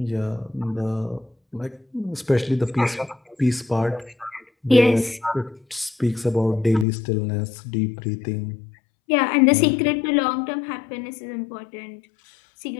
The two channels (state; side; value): drops out; right; at 6.9 s